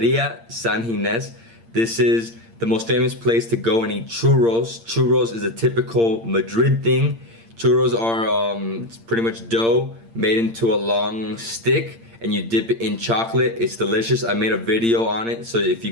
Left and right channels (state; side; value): late; left; 8.7 ms